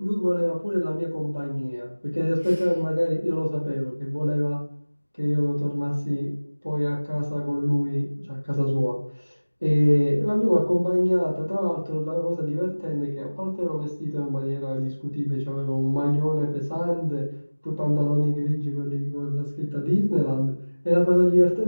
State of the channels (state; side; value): inverted; both; correlation -1.00